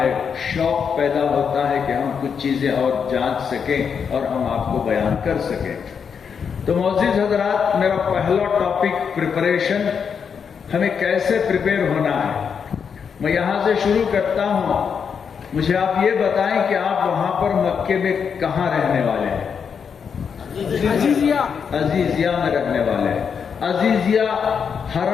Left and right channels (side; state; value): right; quieter; 6.7 dB